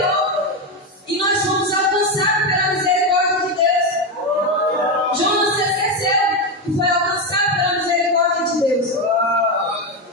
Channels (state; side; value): normal; both; correlation 0.11